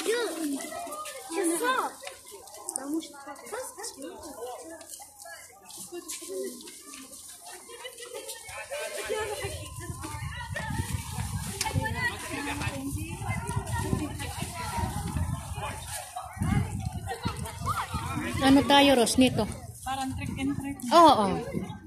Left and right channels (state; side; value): identical; both; correlation 1.00